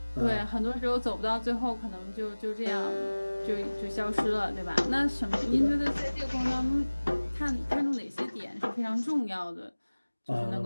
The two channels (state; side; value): inverted; both; correlation -1.00